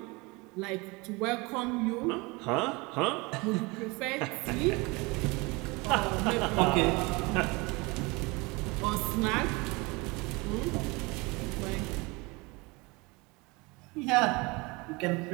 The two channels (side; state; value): left; quieter; 25.9 dB